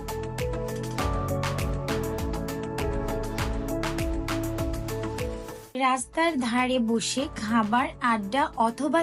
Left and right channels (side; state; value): both; identical; correlation 1.00